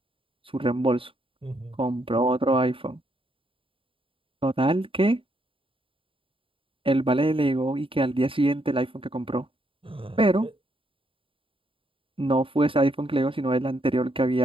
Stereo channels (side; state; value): left; late; 0.25 ms